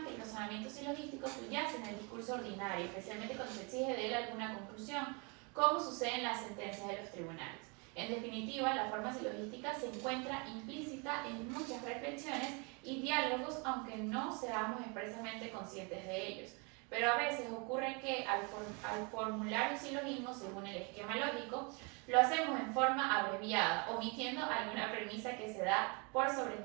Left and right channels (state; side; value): quieter; left; 32.1 dB